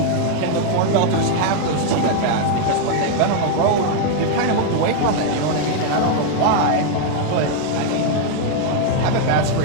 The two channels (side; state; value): both; different; correlation 0.00